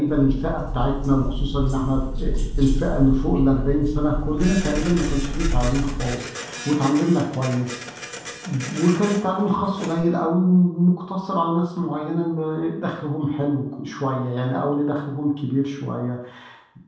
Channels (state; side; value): identical; both; correlation 1.00